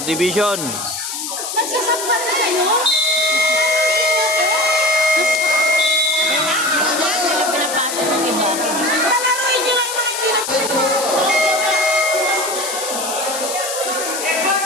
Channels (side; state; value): left; noise; hiss, 5 dB below the sound